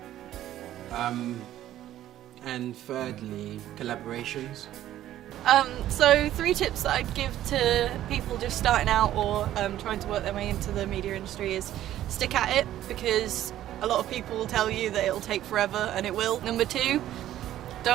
And thirdly, collaborations. So 3 tips that I'd give to people just starting out or trying to work their way into the media industry is stick at it, because a lot of people will tell you that it'll take forever, and it will. Number 2,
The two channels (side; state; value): left; quieter; 12.8 dB